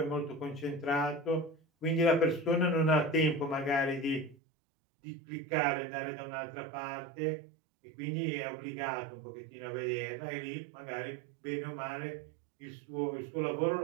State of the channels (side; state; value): left; drops out; at 4.4 s